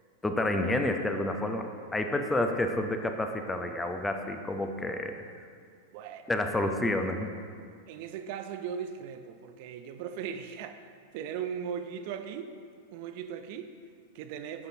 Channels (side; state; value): both; normal; correlation 0.52